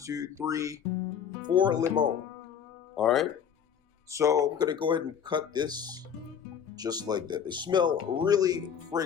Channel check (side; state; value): right; quieter; 8.0 dB